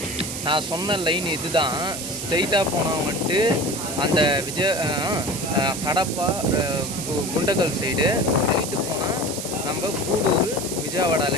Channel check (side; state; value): right; noise; hiss, 6 dB below the sound